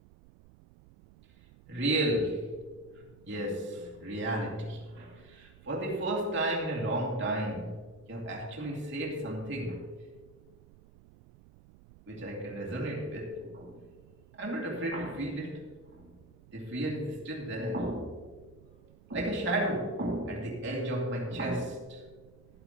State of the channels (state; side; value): noise; right; rumble, 22 dB below the sound